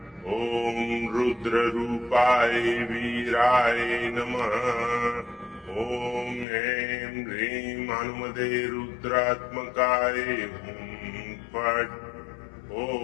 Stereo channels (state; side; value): drops out; right; at 6.5 s